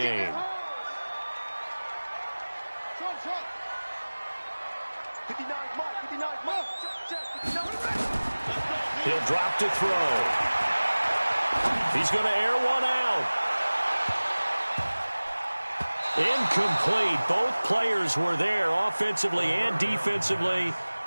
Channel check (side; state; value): both; inverted; correlation -1.00